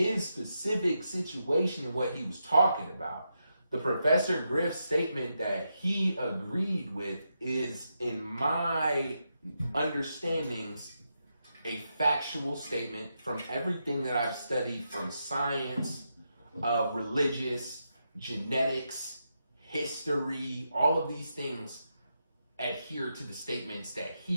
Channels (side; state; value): both; inverted; correlation -0.84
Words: specific situation and what he was talking about, the Professor Griff statement that he agreed with is, in my understandings, a factual statement from everything that I've studied, from science, religious, genetics, history. All of these things adhere to the statements that